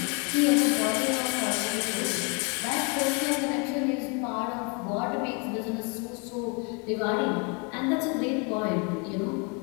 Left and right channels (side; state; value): right; quieter; 32.9 dB